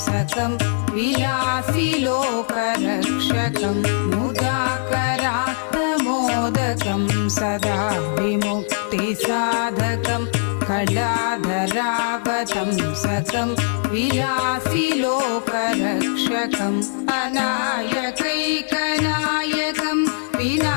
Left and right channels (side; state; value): right; silent; 65 dB below the other